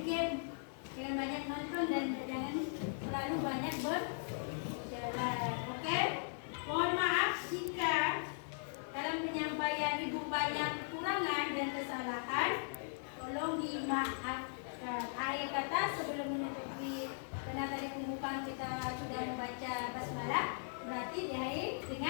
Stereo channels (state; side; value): silent; right; digital silence